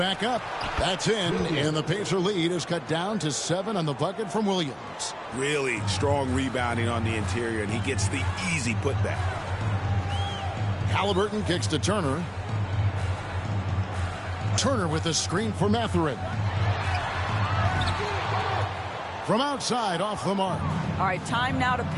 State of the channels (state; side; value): identical; both; correlation 1.00